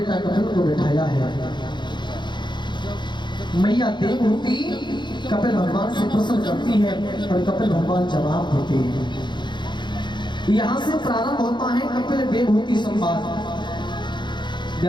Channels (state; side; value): late; right; 0.22 ms